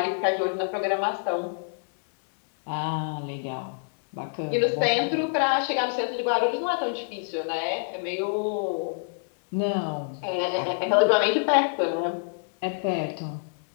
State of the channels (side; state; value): right; silent; digital silence